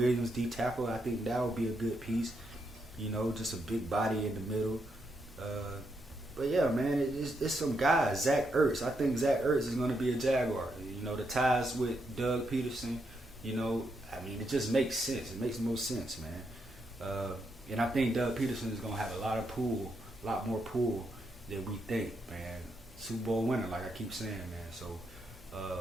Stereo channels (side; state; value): both; normal; correlation 0.80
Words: D tackle. I think that would be a good piece. You know, just a big body in the middle. But yeah, man, it's some guys. Zach Ertz. I think Zach Ertz is going to be a Jaguar. You know, the ties with Doug Peterson, you know, I mean, it just makes sense. It makes the most sense, man. And I think Doug Peterson is going to have a lot more pull than we think, man. Super Bowl winner, like I keep saying, man. So,